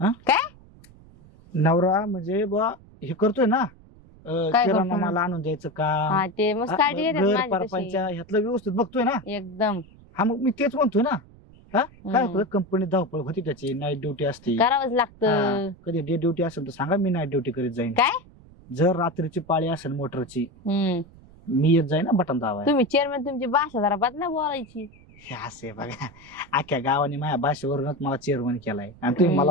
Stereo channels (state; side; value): noise; right; rumble, 24 dB below the sound